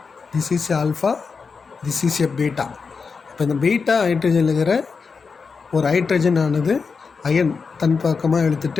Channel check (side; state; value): right; quieter; 5.1 dB